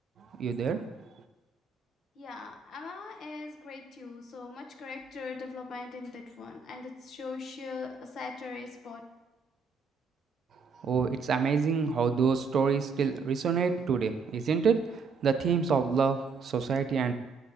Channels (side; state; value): left; quieter; 5.0 dB